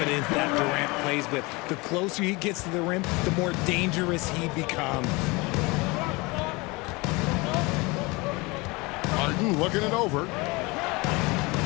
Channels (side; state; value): right; quieter; 25.0 dB